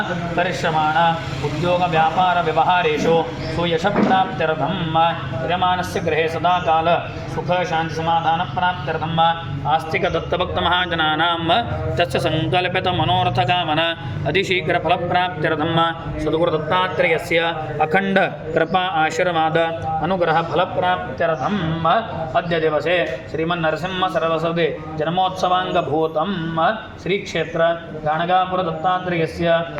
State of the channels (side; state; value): both; identical; correlation 1.00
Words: करिष्यमाण उद्योग व्यापार व्यवहारेषु सुयशप्राप्त्यर्थं यजमानस्य गृहे सदा काल सुख शांति समाधान प्राप्त्यर्थम आस्तिक दत्तभक्त महाजनानां तस्य संकल्पित मनोरथ कामना अतिशीघ्र फल प्राप्त्यर्थम सद्गुरु दत्तात्रेयस्य अखंड कृपा आशीर्वाद अनुग्रह फल प्राप्त्यर्थम अद्य दिवसे श्रीमन्नरसिंह सरस्वती जन्मोत्सवांगभूतं श्री क्षेत्र गाणगापुर दत्तात्रेयस्य